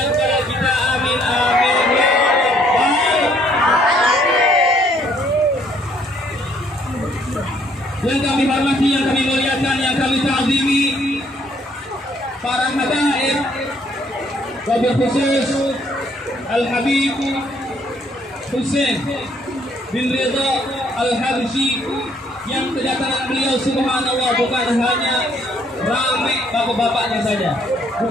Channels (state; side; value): normal; both; correlation 0.65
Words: kepada kita. Amin amin ya Yang kami hormati, yang kami muliakan, yang kami ta'zimi, para hadirin wabil khusus Al-Habib Husain bin Ridha Al-Habsyi, yang kedatangan beliau subhanallah bukan hanya ramai bapak-bapaknya saja,